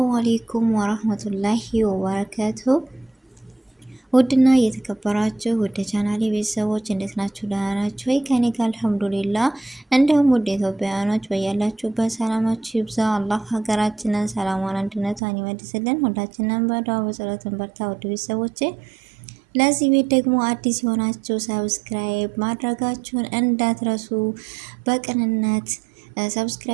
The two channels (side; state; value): left; drops out; at 15.2 s